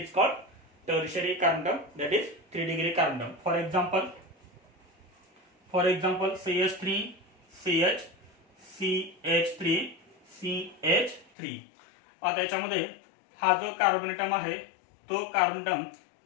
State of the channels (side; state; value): right; drops out; at 11.2 s